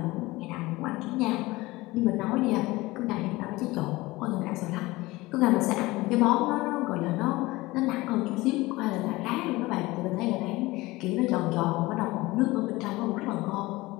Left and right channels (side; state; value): right; quieter; 20.4 dB